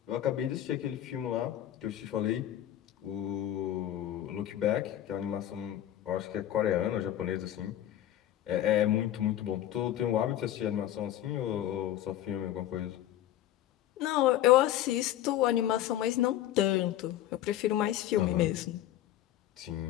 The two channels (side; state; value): right; quieter; 12.5 dB